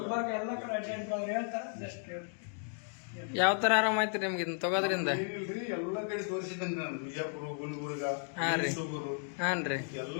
ಎಲ್ಲ ಕಡೆ ಅಡ್ಡಾಡಿದ್ರು. ಹೇಳ್ತಾರೆ, ಜಸ್ಟ್ ಯಾವ ತರ ಆರಾಮ ಆಯ್ತು ನಿಮ್ಗೆ ಇದನ್ನ ತಗೋದ್ರಿಂದ? ಎಲ್ಲ ಕಡೆ ತೋರಿಸಿದ್ದೇನೆ ನಾನು. ಬಿಜಾಪುರ, ಗುಲ್ಬರ್ಗ, ಹಾನ್ರಿ ಎಲ್ಲ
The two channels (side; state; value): right; silent; 55 dB below the other